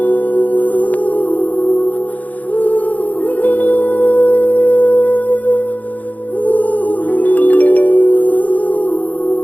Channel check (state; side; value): late; right; 0.077 ms